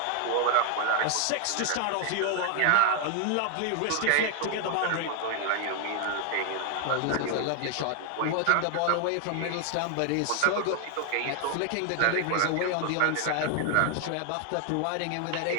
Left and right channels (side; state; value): both; different; correlation 0.00